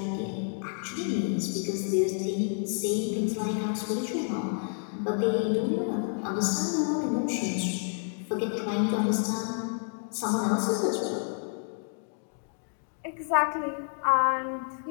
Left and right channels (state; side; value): silent; right; 58 dB below the other